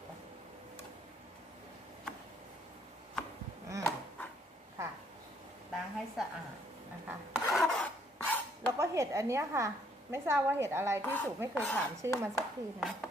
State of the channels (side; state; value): both; normal; correlation 0.66